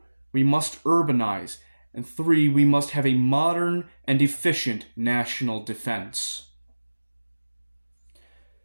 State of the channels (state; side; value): inverted; both; correlation -1.00